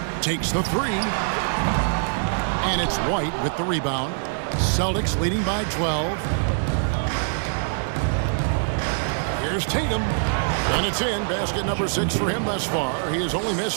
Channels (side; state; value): left; silent; 57 dB below the other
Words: takes the three. And it's White with the rebound. Celtics leading by 12. Here's Tatum. And it's in. Basket number 6 for him thus far. He has only